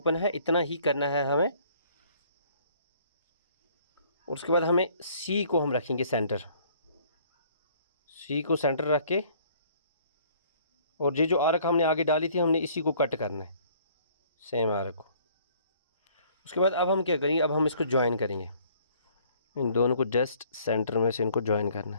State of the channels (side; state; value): both; inverted; correlation -0.58